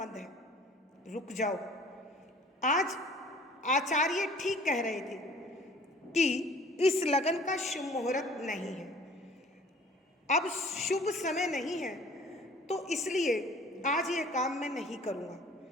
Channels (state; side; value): normal; both; correlation 0.51